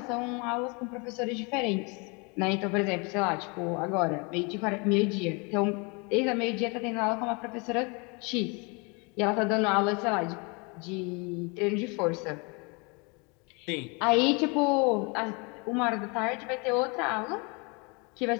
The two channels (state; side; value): quieter; right; 31.2 dB